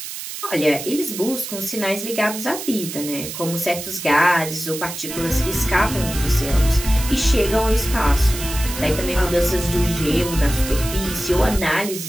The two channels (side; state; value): right; noise; hiss, 8 dB below the sound